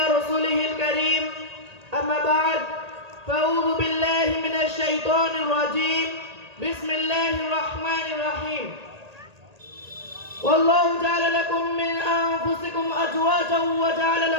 رسوله الكريم أما بعد فأعوذ بالله من الشيطان الرجيم بسم الله الرحمن الرحيم والله جعل لكم من أنفسكم أزواجا وجعل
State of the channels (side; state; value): left; late; 1.8 ms